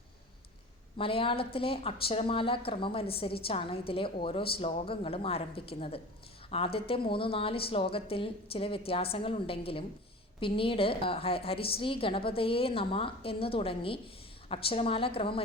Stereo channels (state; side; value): normal; both; correlation 0.37